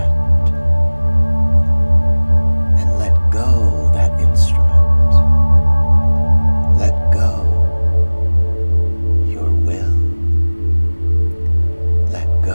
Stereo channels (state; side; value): inverted; both; correlation -1.00